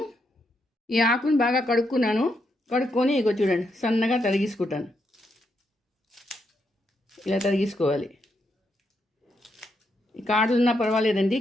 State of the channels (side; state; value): both; normal; correlation 0.80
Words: ఈ ఆకుని బాగా కడుక్కొని ఇగో చూడండి సన్నగా తరిగేసుకుంటాను. ఇలా తరిగేసుకోవాలి. ఈ కాడలు ఉన్నా పర్వాలేదండి,